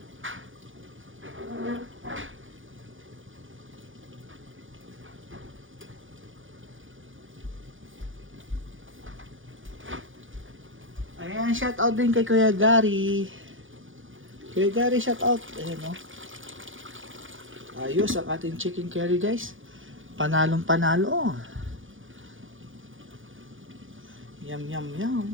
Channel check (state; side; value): late; left; 0.58 ms